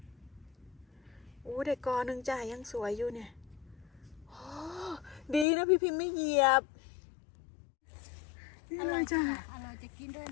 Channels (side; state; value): right; drops out; at 5.5 s